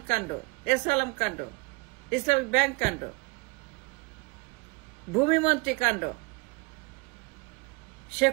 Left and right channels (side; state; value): left; quieter; 28.5 dB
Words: কাণ্ড, এসালাম কাণ্ড, ইসলামিক ব্যাংক কাণ্ড, ভূমিমন্ত্রী কাণ্ড, সে